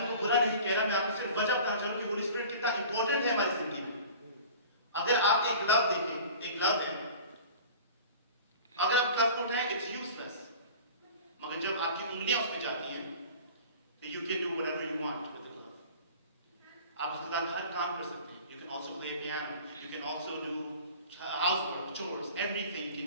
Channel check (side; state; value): both; inverted; correlation -0.42